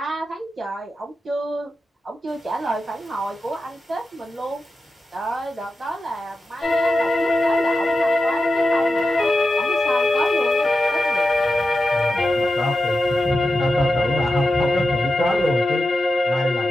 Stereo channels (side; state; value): both; normal; correlation 0.91